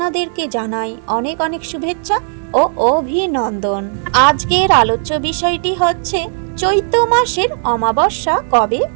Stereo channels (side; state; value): left; silent; digital silence